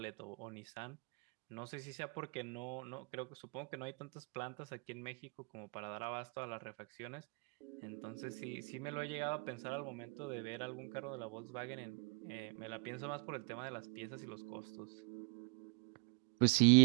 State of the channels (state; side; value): quieter; left; 33.7 dB